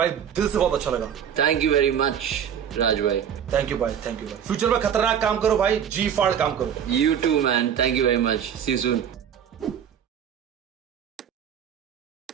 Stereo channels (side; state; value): left; quieter; 8.7 dB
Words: दिल से बहुत अच्छा लगा. Thank you very much, Raj bhai. Thank you भाई, थैंक यू भाई. फ्यूचर में खतरनाक काम करो भाई, जी फाड़ काम करो. You too, man. Thank you very much. See you soon.